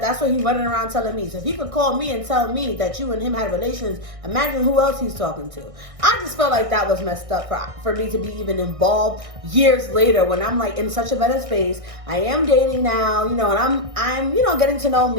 what he's running around telling me. So if he could call me and tell me that you and him had relations, imagine who else he's talking to. I just felt like that was messed up for me to be even involved years later, when I'm like in such a better space. I am dating now, you know, and I'm you know, getting to know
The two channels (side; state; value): left; late; 1.6 ms